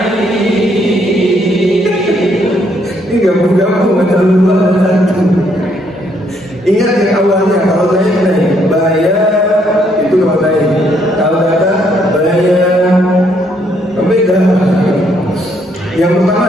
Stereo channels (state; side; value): normal; both; correlation 0.70